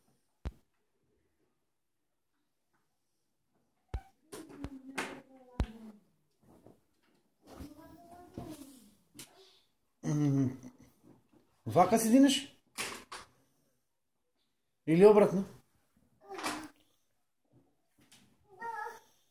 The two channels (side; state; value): both; identical; correlation 1.00